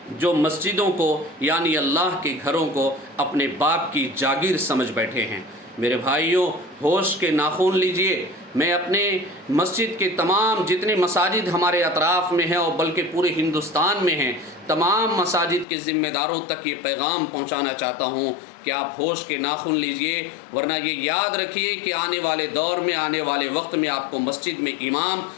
جو مسجدوں کو، یعنی اللہ کے گھروں کو اپنے باپ کی جاگیر سمجھ بیٹھے ہیں۔ میرے بھائیوں، ہوش کے ناخن لیجئے۔ میں اپنے مسجد کے تمام جتنے مساجد ہمارے اطراف میں ہیں، اور بلکہ پورے ہندوستان میں ہیں، تمام مساجد کے ذمہ داروں تک یہ پیغام پہنچانا چاہتا ہوں کہ آپ ہوش کے ناخن لیجئے، ورنہ یہ یاد رکھیے کہ آنے والے دور میں، آنے والے وقت میں آپ کو مسجد میں امام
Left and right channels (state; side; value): drops out; right; at 15.7 s